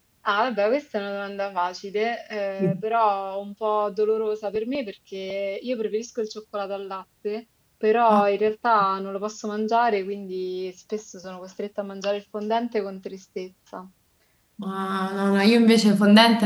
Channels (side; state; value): both; identical; correlation 1.00